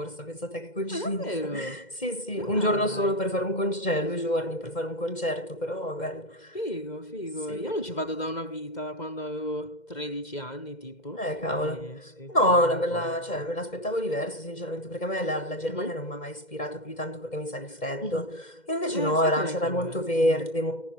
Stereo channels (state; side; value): late; right; 2.1 ms